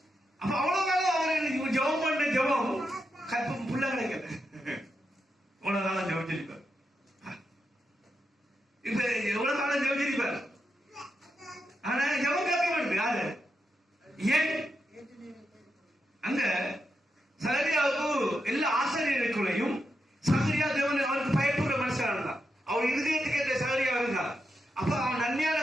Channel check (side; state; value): both; normal; correlation 0.85